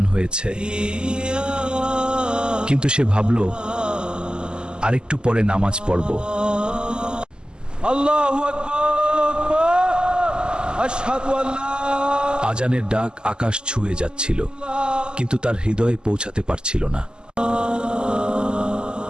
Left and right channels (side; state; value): left; late; 0.047 ms